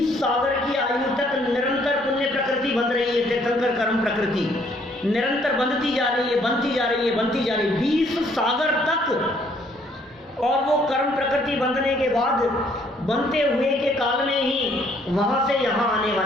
सागर की आयु तक निरंतर पुण्य प्रकृति बंध रही है। तीर्थंकर कर्म प्रकृति निरंतर बंधती जा रही है, बनती जा रही है, बनती जा रही है 20 सागर तक। और वो कर्म प्रकृति बंधने के बाद बनते हुए के काल में ही वहां से यहाँ आने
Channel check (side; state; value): both; normal; correlation 0.65